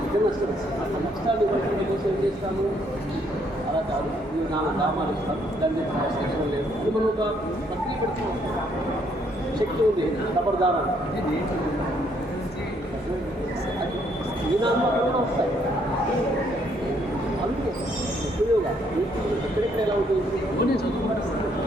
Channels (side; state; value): both; normal; correlation 0.69